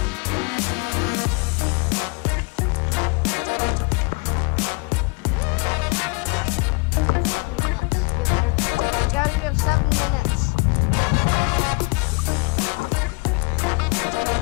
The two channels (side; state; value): right; quieter; 30.0 dB